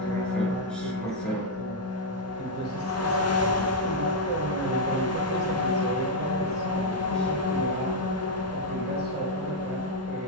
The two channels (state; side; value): normal; both; correlation -0.02